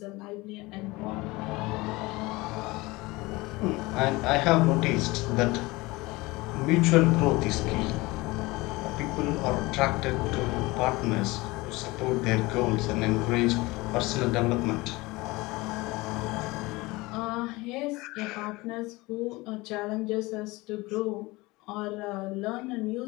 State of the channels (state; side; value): quieter; right; 22.0 dB